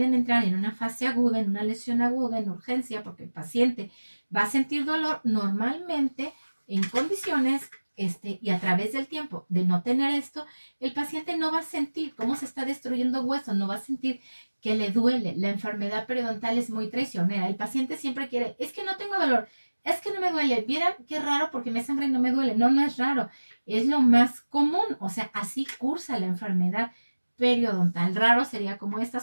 entrar en una fase aguda, en una lesión aguda, en urgencia, porque el paciente va a sentir dolor, normalmente en condiciones y a través del tiempo de no tener esto, el paciente no va a sentir cómo se está destruyendo hueso, no va a sentir que le duele. La enfermedad periodontal es muy traicionera. El paciente siempre quiere, es que no tengo dolor, es que no me duele. Vieran qué raro porque me sangra y no me duele. No, no es raro. Es lo más común. O sea, así cursa la enfermedad periodontal. Raro sería como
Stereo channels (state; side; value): inverted; both; correlation -1.00